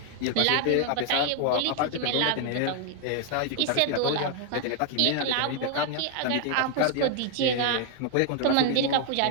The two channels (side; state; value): both; different; correlation 0.00